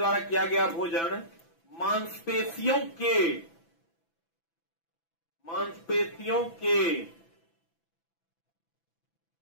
किया गया भोजन मांसपेशियों के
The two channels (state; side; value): late; right; 6.0 ms